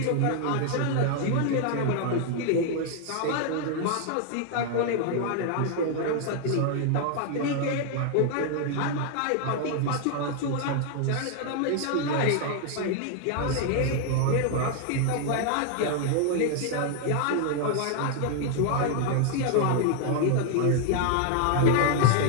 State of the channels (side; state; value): both; different; correlation 0.00